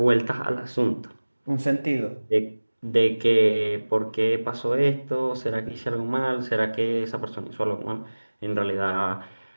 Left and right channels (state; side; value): inverted; both; correlation -1.00